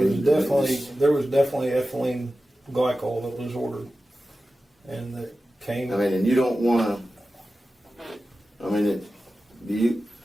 was definitely ethylene glycol that was ordered, and that came. I mean, and you don't want to. I mean,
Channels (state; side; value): normal; both; correlation 0.94